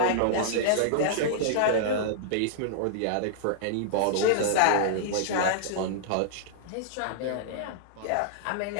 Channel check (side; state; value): both; different; correlation -0.02